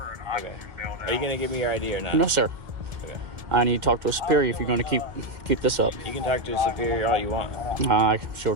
Okay. Are you going to give me your ID or not? No, sir. Okay. I need to talk to a superior if you're going to keep this up. You can talk to a superior all you want. I sure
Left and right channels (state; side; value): late; left; 1.7 ms